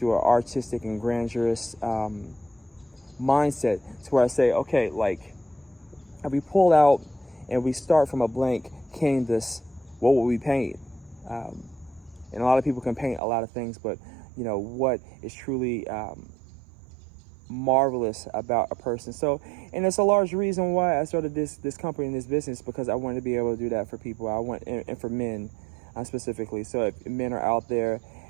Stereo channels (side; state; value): left; drops out; at 13.2 s